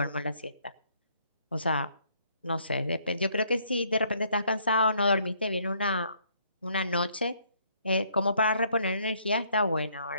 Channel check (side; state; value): both; inverted; correlation -0.67